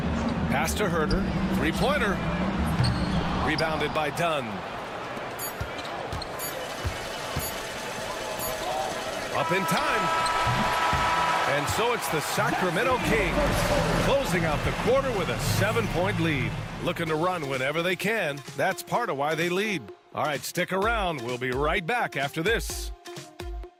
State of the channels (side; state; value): both; identical; correlation 1.00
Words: Pass to Herder. Three-pointer. Rebounded by Dunn. Up in time. And so it's the Sacramento Kings closing out the quarter with a 7-point lead. Looking to run whenever they can. That's part of why they lead. All right, stick around. We'll be right back after this.